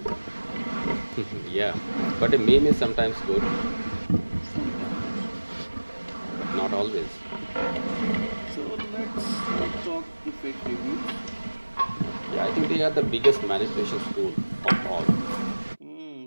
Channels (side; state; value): both; inverted; correlation -1.00